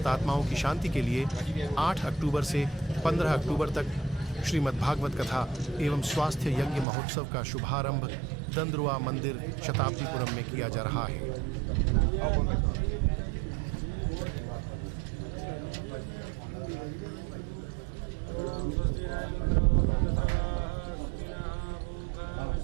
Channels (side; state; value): left; drops out; at 6.9 s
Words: की शांति के लिए 8 अक्टूबर से 15 अक्टूबर तक श्रीमद् भागवत कथा एवं स्वास्थ्य यज्ञ महोत्सव का शुभारंभ दंदरौवा मंदिर शताब्दीपुरम में किया जा रहा है।